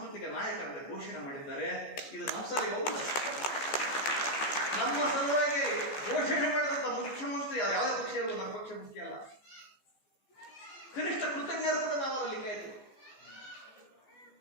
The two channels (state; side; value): late; right; 15 ms